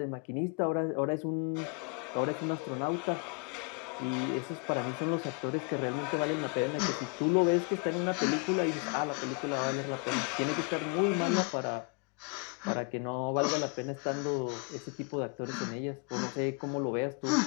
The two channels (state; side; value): quieter; right; 32.7 dB